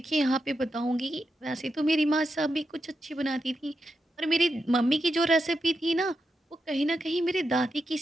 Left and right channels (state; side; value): normal; both; correlation 0.87